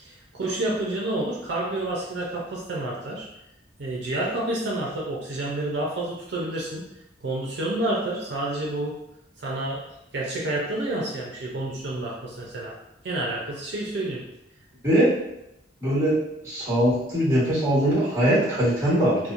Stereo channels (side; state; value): both; normal; correlation 0.53